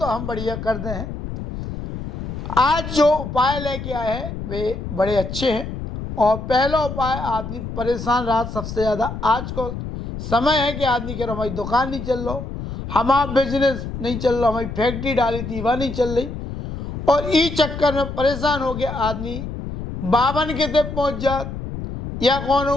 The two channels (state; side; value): noise; left; rumble, 7 dB below the sound